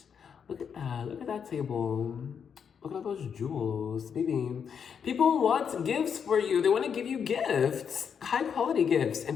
Look at that. Look at that table. Look at all those jewels, baby. People want gifts for you. They want to give you gifts, high quality gifts.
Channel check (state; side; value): quieter; right; 7.1 dB